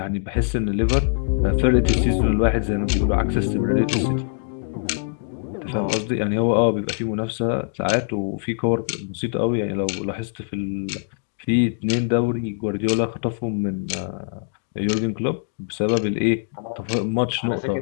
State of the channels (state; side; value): silent; right; digital silence